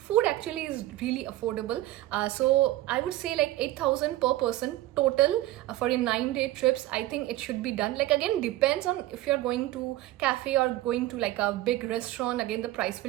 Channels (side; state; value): left; quieter; 16.1 dB